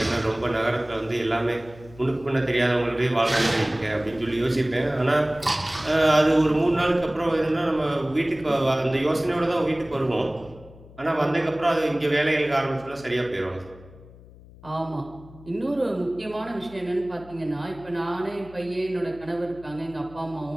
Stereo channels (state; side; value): noise; left; hum, 21 dB below the sound